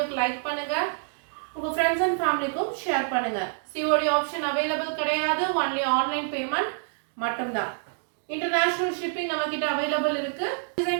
லைக் பண்ணுங்க. உங்க फ्रेंड्स and ஃபேமிலிக்கும் ஷேர் பண்ணுங்க. COD ஆப்ஷன் அவேலபிள் கிடையாது. ஒன்லி ஆன்லைன் பேமெண்ட் மட்டும்தான். இன்டர்நேஷனல் ஷிப்பிங் நம்ம கிட்ட அவேலபிள் இருக்கு.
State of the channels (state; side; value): silent; left; digital silence